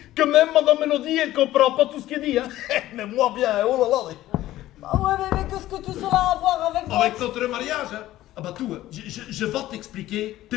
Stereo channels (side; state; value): right; quieter; 14.9 dB